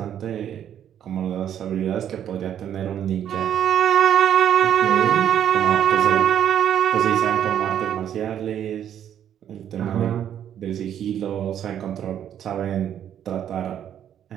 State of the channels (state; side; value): quieter; left; 9.9 dB